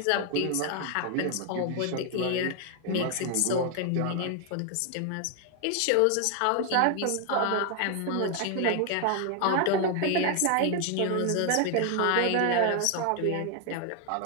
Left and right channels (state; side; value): different; both; correlation 0.00